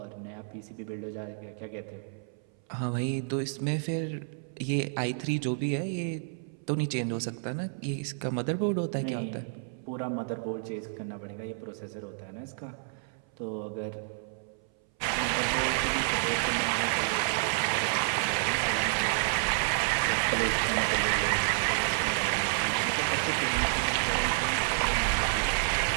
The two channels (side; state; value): left; silent; 58 dB below the other